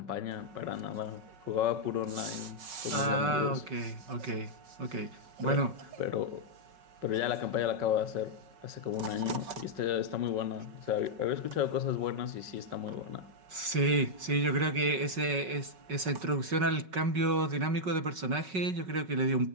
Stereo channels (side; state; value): left; late; 5.4 ms